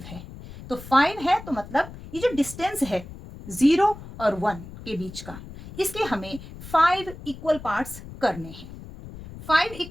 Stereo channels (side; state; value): left; noise; rumble, 14 dB below the sound